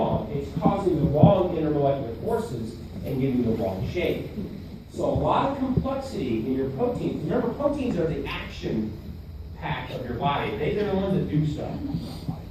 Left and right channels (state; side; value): identical; both; correlation 1.00